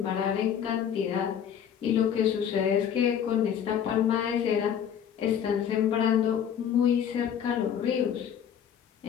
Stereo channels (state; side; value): quieter; right; 8.7 dB